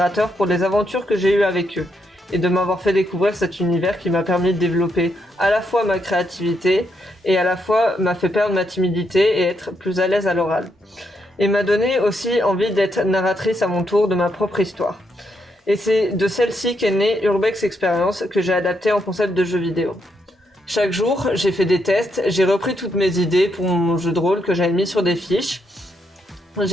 pour les aventures que j'ai eues avec eux. Et de m'avoir fait découvrir cet univers qui m'a permis de développer à la fois ma créativité et à la fois m'a fait perdre ma timidité et être plus à l'aise à l'oral. Et m'a donné aussi envie d'être narratrice à mon tour de ma propre histoire. Et c'est de celle-ci qu'est née Urbex Experience que j'ai adapté en concept de jeu vidéo. Chaque jour, j'ai fait des tests, j'ai repris toutes mes idées pour mon jeu de rôle que j'avais mis sur des fiches.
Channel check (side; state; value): both; normal; correlation 0.79